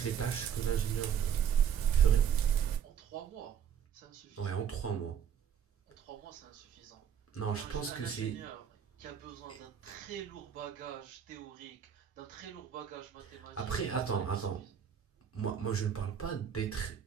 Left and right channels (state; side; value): quieter; left; 8.4 dB